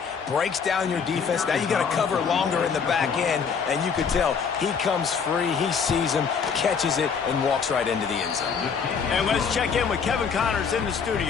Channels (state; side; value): quieter; right; 6.2 dB